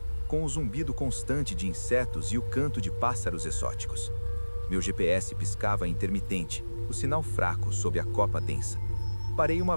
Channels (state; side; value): inverted; both; correlation -1.00